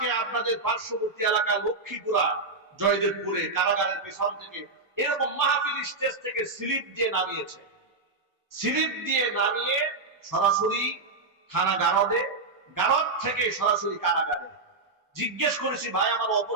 আপনাদের পার্শ্ববর্তী এলাকা লক্ষ্মীপুরা, জয়দেবপুরে কারাগারের পেছন থেকে এরকম মাহফিল স্টেজ থেকে স্লিপ দিয়ে নামিয়েছে। স্লিপ দিয়ে নামিয়ে সরাসরি থানা গারদে, গারদ থেকে সরাসরি কারাগারে। জিজ্ঞেস করেছি, ভাই আমার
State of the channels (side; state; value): left; quieter; 3.6 dB